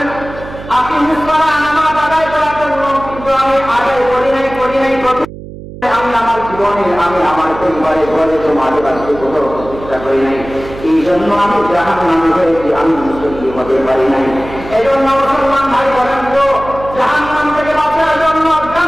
আকিমিস সালাহ, নামাজ আদায় করার জন্য, কিন্তু আমি আদায় করি নাই। আমি আমার জীবনে আমি আমার পরিবারে ঘরে সমাজে বাঁচতে কোথাও চেষ্টা করি নাই, এই জন্য আমি জাহান্নামী হয়েছি, আমি মুসলিম হতে পারি নাই। এই জন্য মুসলমান ভাই বলেন তো জাহান্নাম থেকে বাঁচার জন্য,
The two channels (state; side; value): noise; right; hum, 14 dB below the sound